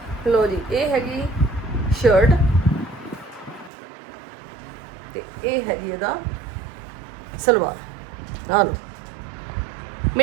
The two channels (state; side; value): drops out; left; at 3.7 s